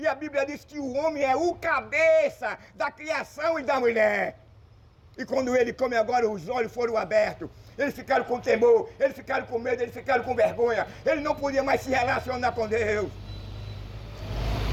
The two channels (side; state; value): both; identical; correlation 1.00